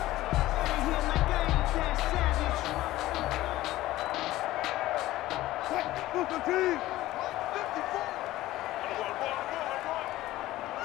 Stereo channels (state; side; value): quieter; right; 16.2 dB